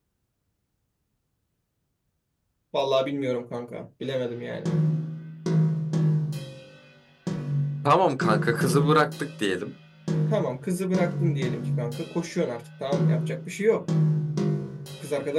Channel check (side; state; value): both; identical; correlation 1.00